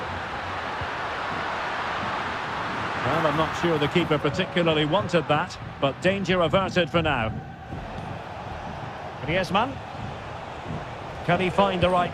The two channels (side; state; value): both; identical; correlation 1.00